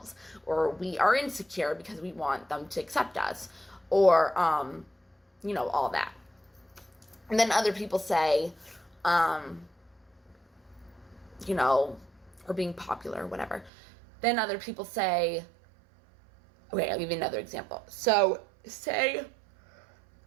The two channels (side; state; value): left; drops out; at 13.7 s